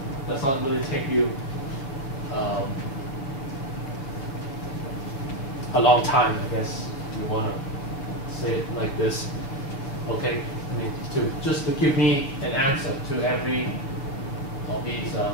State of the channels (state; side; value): late; right; 7.1 ms